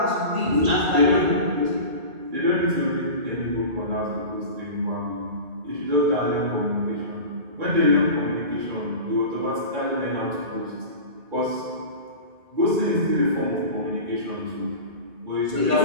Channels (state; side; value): late; left; 2.3 ms